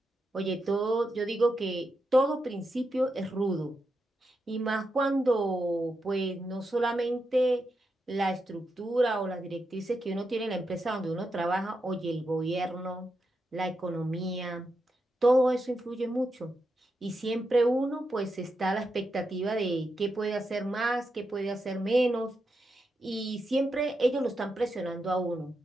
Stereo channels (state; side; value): normal; both; correlation 0.85